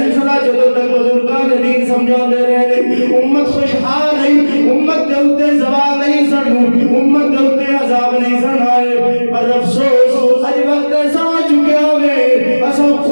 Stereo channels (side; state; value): both; inverted; correlation -1.00